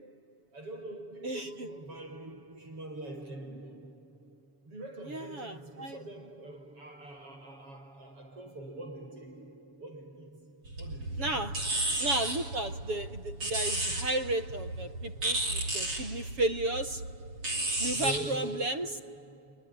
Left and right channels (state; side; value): late; left; 7.1 ms